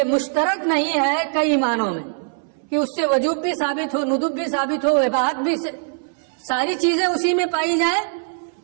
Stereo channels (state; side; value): silent; left; 65 dB below the other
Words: مشترک نہیں ہے کئی معنوں میں کہ اس سے وجوب بھی ثابت ہو، ندب بھی ثابت ہو، اباحت بھی، ساری چیزیں اسی میں پائی جائیں،